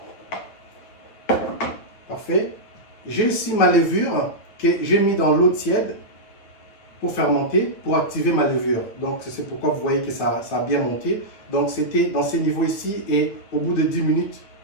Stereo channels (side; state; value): right; late; 9.1 ms